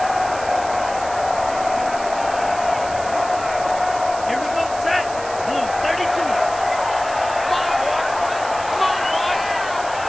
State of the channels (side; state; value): right; noise; hiss, 14 dB below the sound